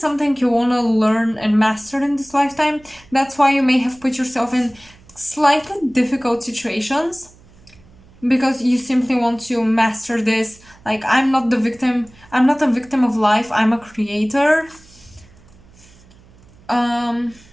you want to learn and master in this lifetime. That's why you may have put yourself in slightly difficult situations, because you simply want to master this. Like, I'm not a victim of life, I'm a creator. And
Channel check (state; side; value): noise; right; hum, 26 dB below the sound